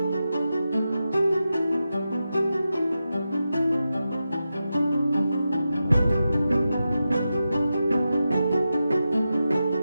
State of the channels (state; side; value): inverted; both; correlation -0.91